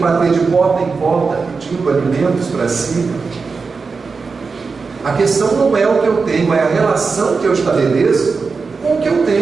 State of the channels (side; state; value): left; quieter; 4.7 dB